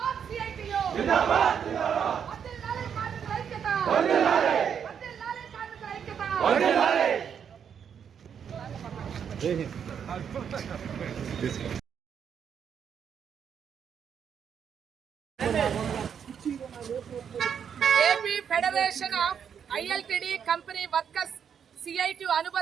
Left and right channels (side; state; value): left; quieter; 7.8 dB